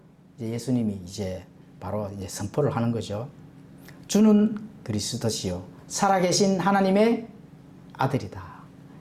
이제 예수님이 이제 바로 이제 선포를 하는 거죠. 주는 그리스도시요 살아계신 하나님의 아들이다.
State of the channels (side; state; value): both; identical; correlation 1.00